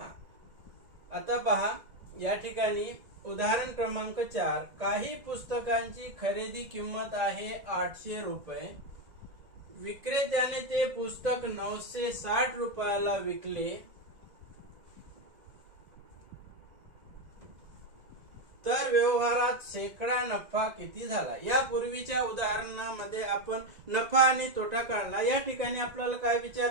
आता पहा, या ठिकाणी उदाहरण क्रमांक 4. काही पुस्तकांची खरेदी किंमत आहे 800 रुपये. विक्रेत्याने ते पुस्तक 960 रुपयाला विकले. तर व्यवहारात शेकडा नफा किती झाला. या पूर्वीच्या उदाहरणामध्ये आपण नफा आणि तोटा काढला. या ठिकाणी आपल्याला काय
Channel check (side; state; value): left; late; 2.0 ms